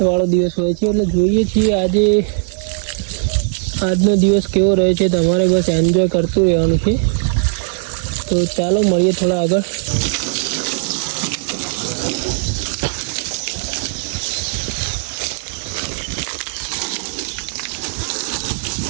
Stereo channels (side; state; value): left; silent; digital silence